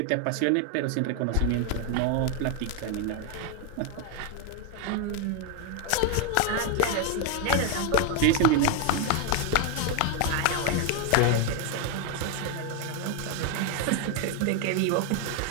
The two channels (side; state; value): both; different; correlation 0.01